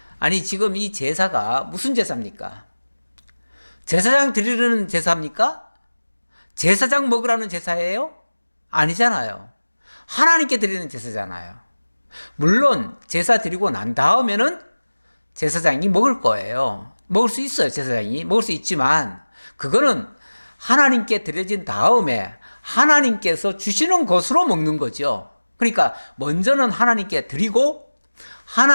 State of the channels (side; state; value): both; inverted; correlation -1.00